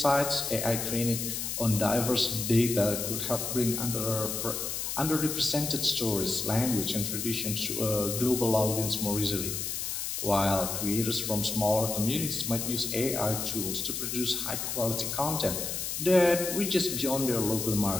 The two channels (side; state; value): left; noise; hiss, 3 dB below the sound